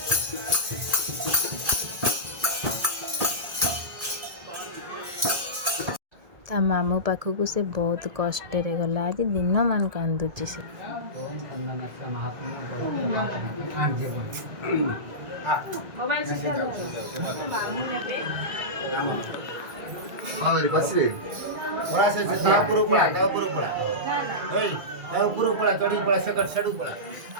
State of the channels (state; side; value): late; left; 1.8 ms